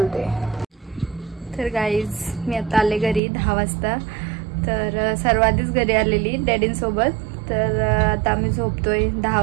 तर गाईज मी आता आले घरी 10 वाजता. तर सर्व आधीच घरी आलेली डॅडींसोबत. तर आता आम्ही झोपतोय. 10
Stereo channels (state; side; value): drops out; left; at 3.2 s